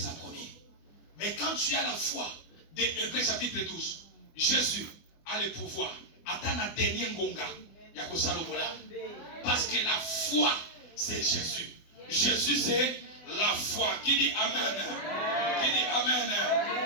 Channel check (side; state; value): right; late; 24 ms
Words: promis. Mais quand tu as la foi des Hébreux chapitre 12, Jésus a le pouvoir. Attends la dernière ngonga. Parce que la foi, c'est Jésus. Jésus, c'est la foi. Qui dit Amen? Qui dit Amen?